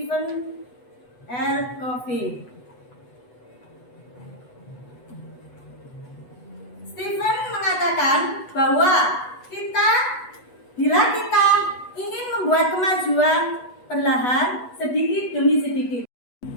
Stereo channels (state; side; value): late; right; 8.2 ms